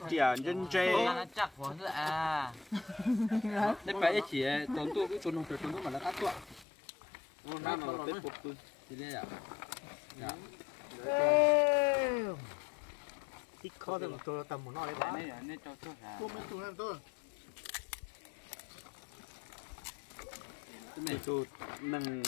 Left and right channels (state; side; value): drops out; right; at 6.7 s